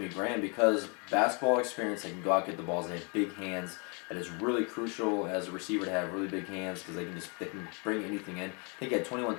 Graham, because basketball experience, they can go out and get the balls. They have big hands. That is really crucial as a receiver to have really big hands because they can bring anything in. I think he had 21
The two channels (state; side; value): quieter; right; 33.8 dB